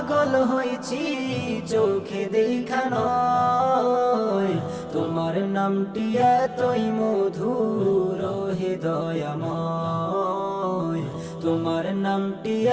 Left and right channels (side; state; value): both; identical; correlation 1.00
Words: হয়েছি চোখে দেখা নয়। তোমার নামটি এতই মধুর হে দয়াময়, তোমার নামটি